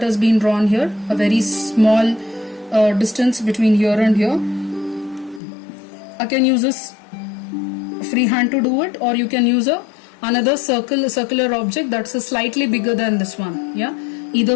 has been drawn here, a very small distance between here and here. I can use this freehand to do it, or you can use another circular object that's a slightly bigger than this one. Yeah,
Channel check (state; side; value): drops out; right; at 5.4 s